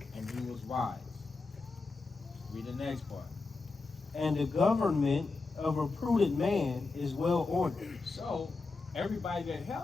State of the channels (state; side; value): quieter; right; 3.9 dB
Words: and he was wise. Read the next part. And the government of a prudent man is well ordered. So everybody that